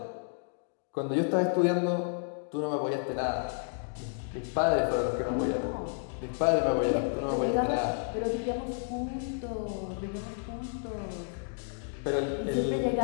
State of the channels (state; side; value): silent; right; digital silence